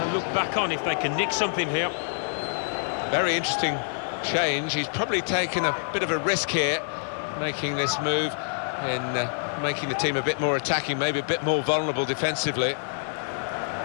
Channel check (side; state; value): right; silent; digital silence